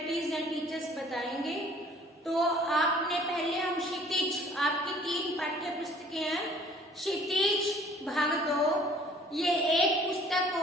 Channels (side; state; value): both; normal; correlation 0.54